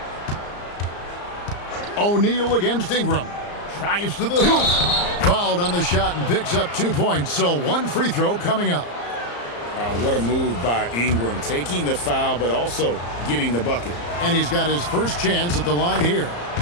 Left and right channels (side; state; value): right; late; 34 ms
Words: O'Neal against Ingram. Drives to the hoop. Fouled on the shot and picks up 2 points. So one free throw coming up. What a move by Ingram. Taking the foul, but also getting the bucket. And he's got his first chance at the line here.